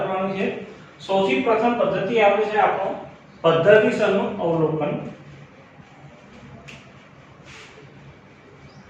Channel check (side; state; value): both; identical; correlation 1.00